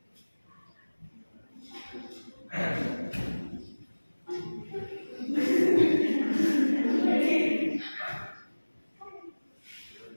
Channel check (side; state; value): both; inverted; correlation -1.00